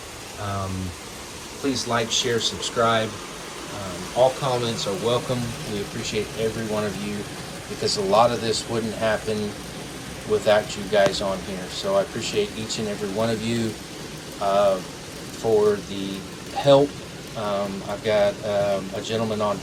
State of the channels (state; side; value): identical; both; correlation 1.00